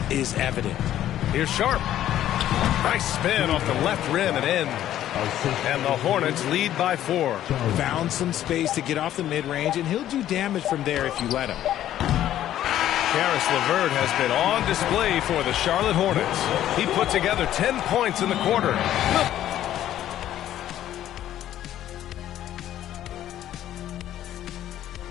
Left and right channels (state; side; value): quieter; right; 12.2 dB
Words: is evident. Here's Sharp. Nice spin off the left rim and in. And the Hornets lead by 4. Found some space to get off the mid-range, and he'll do damage from there if you let him. Caris LeVert has been on display for the Charlotte Hornets. He put together 10 points in the quarter.